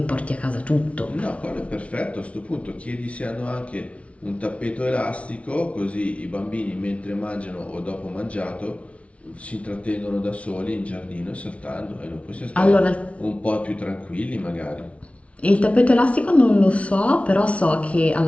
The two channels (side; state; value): right; late; 0.063 ms